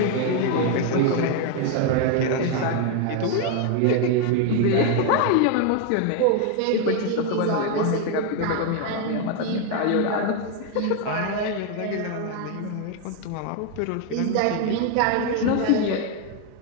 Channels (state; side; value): different; both; correlation 0.01